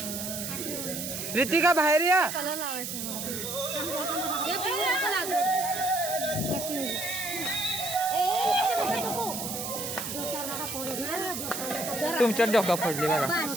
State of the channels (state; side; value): noise; right; hiss, 5 dB below the sound